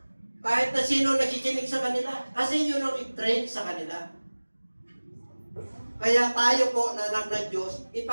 Kahit na sino nakikinig sa kanila. Kasi yun ang i-train sa kanila. Kaya tayo po na anak ng Diyos,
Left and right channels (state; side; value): inverted; both; correlation -1.00